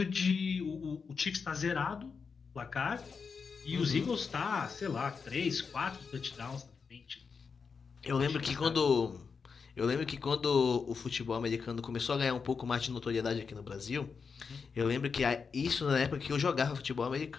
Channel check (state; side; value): quieter; right; 5.5 dB